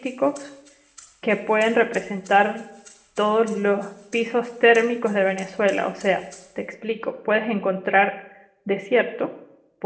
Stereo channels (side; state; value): both; identical; correlation 1.00